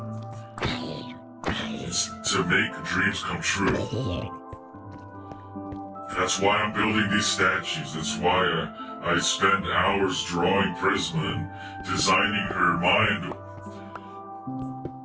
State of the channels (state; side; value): identical; both; correlation 1.00